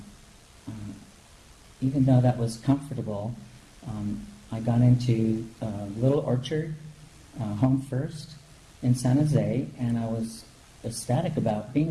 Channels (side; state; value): both; identical; correlation 1.00